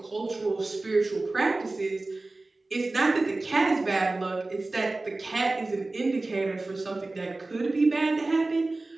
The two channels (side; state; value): left; quieter; 3.1 dB